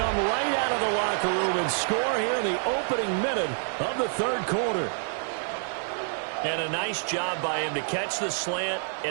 right out of the locker room and score here in the opening minute of the third quarter. And a nice job by him to catch the slant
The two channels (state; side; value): silent; left; digital silence